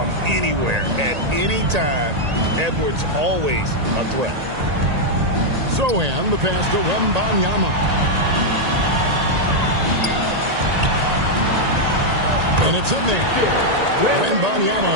anywhere at any time. Edwards always a threat. Sochan, the pass to Wembanyama. And it's in there.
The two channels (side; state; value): left; late; 1.8 ms